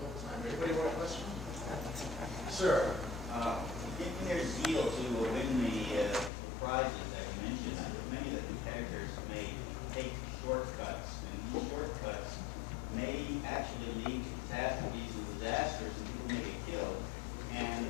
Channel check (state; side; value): drops out; right; at 6.3 s